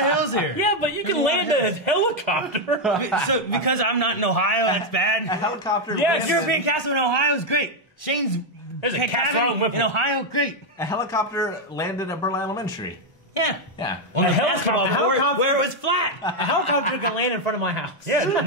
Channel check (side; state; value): both; normal; correlation 0.02